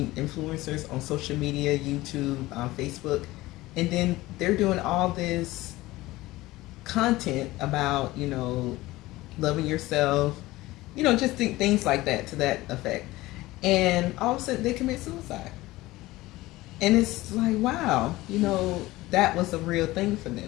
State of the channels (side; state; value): right; quieter; 18.5 dB